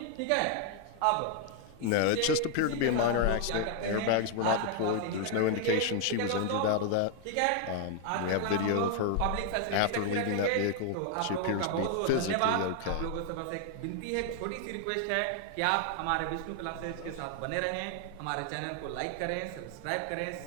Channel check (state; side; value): different; both; correlation 0.00